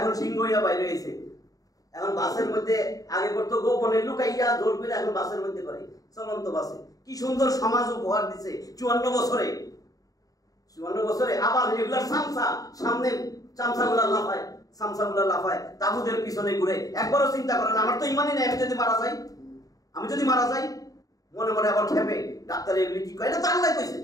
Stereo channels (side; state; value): right; late; 0.17 ms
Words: সিংহ হইয়া বাইরে হয়েছে। এখন বাসের মধ্যে আগে করতো গোপনে লুকাইয়া, জোর করে, এখন বাসের মধ্যে করে, চলন্ত বাসে। কি সুন্দর সমাজ উপহার দিছে 54 বছরে। 54 বছরে আবার রেগুলার সামসা, সামনে চামচাগুলা লাফায়, তাবুদের পিছনে ঘুরে। একবারও চিন্তা করেন, আমার তো ইমানই নেই, আমি যদি মারা যাই, মনে মনে আবার খেপে, ডাক্তার এগুলি কি কয়? এটা তো আল্লাহ কইছে,